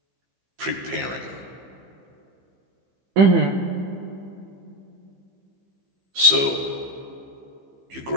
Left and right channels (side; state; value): left; late; 15 ms